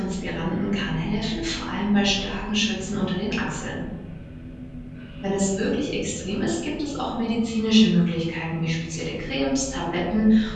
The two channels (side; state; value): both; identical; correlation 1.00